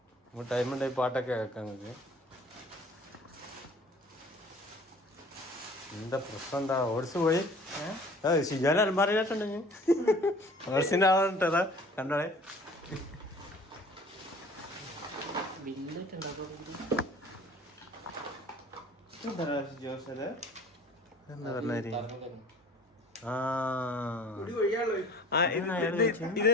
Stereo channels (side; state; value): both; normal; correlation 0.48